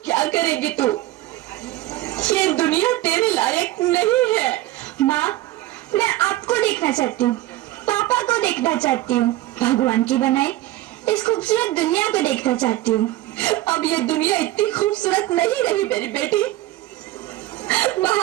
क्या करेगी तू? ये दुनिया तेरे लायक नहीं है। माँ, मैं आपको देखना चाहती हूँ, पापा को देखना चाहती हूँ, भगवान की बनाई इस खूबसूरत दुनिया को देखना चाहती हूँ। अब ये दुनिया इतनी खूबसूरत नहीं रही मेरी बेटी।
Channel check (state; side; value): quieter; left; 16.2 dB